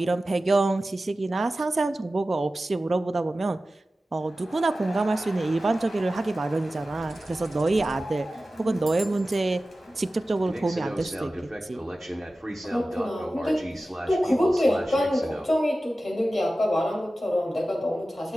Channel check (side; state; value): both; normal; correlation 0.95